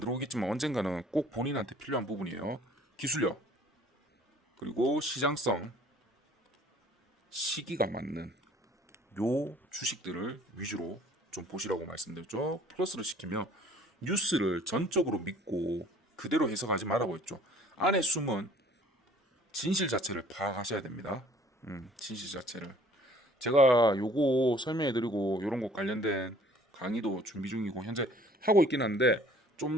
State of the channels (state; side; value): normal; both; correlation 0.54